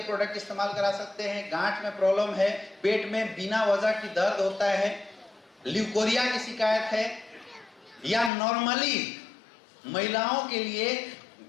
प्रोडक्ट इस्तेमाल करा सकते हैं। गांठ में प्रॉब्लम है, पेट में बिना वजह की दर्द होता है, ल्यूकोरिया की शिकायत है, या नॉर्मली महिलाओं के लिए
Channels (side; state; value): right; drops out; at 8.3 s